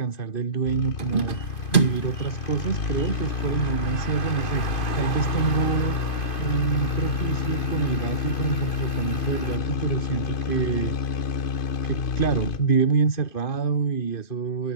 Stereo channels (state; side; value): late; right; 2.5 ms